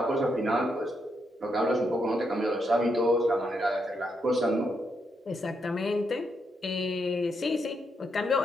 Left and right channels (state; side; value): normal; both; correlation 0.80